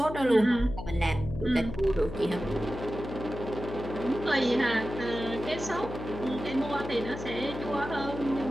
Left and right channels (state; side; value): noise; left; hum, 9 dB below the sound